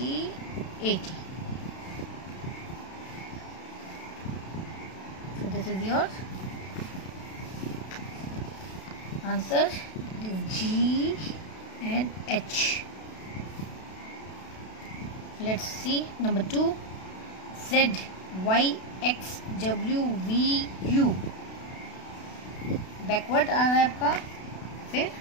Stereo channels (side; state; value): right; late; 32 ms